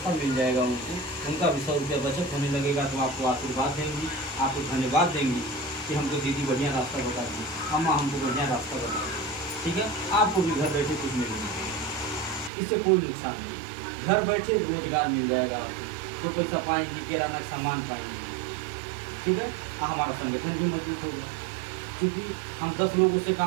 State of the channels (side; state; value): left; drops out; at 12.5 s